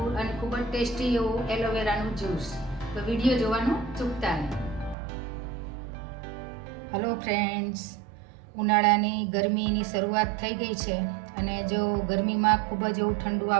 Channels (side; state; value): left; drops out; at 5.0 s